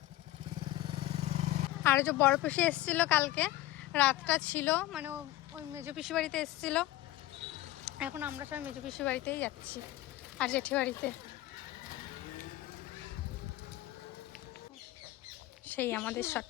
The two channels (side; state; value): right; quieter; 15.8 dB